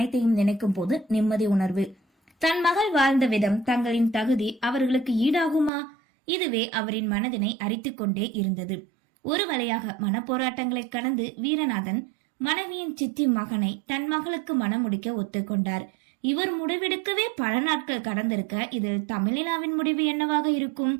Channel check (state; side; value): drops out; left; at 5.7 s